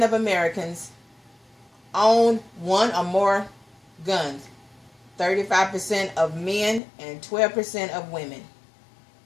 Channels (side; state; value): right; drops out; at 6.8 s